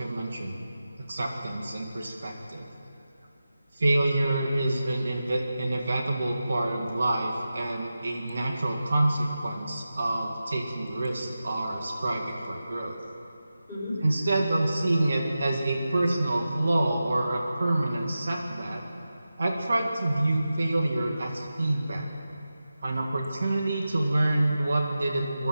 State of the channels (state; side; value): inverted; both; correlation -0.93